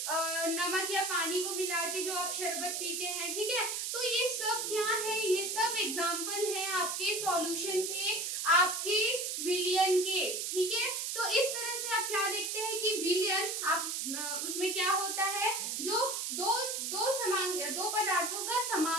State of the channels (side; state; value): right; noise; hiss, 2 dB below the sound